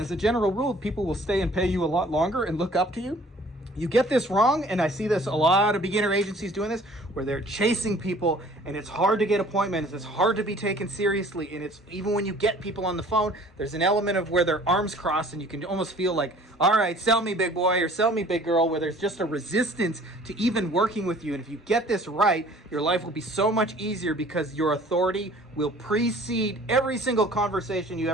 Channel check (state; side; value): normal; both; correlation 0.52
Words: a general rule, people will stay and pay you a lot longer and look up to you. You get this wrong, and I see this a lot of beginner agencies doing this, where they're chasing people, and it's hard to get appointments, it's hard to be taken seriously, and it's even when you get people on the phone, there's an element of where their arms crossed, and you can almost feel like, all right, sell me big boy, or sell me big girl, where there's just a resistance to even working with you. And if you get this right, your life will be so much easier because your authority will precede every single conversation you